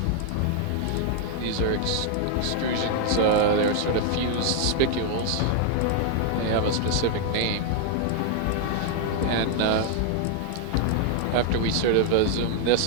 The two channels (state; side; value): different; both; correlation 0.00